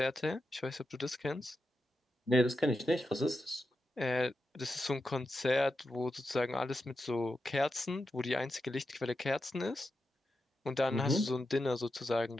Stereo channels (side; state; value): both; normal; correlation 0.88